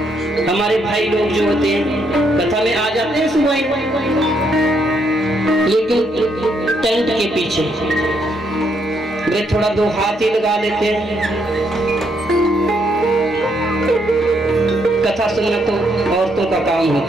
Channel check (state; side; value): normal; both; correlation 0.74